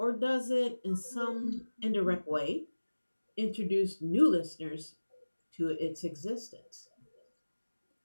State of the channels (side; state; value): both; inverted; correlation -1.00